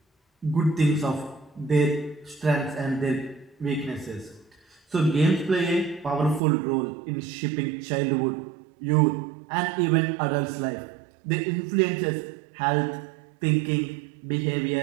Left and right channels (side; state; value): left; drops out; at 6.4 s